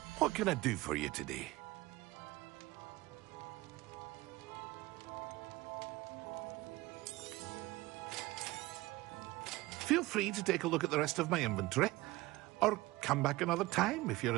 What can I do for you today? Feel free to take a look at the rest of my inventory, or come back another time if you're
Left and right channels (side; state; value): left; quieter; 19.8 dB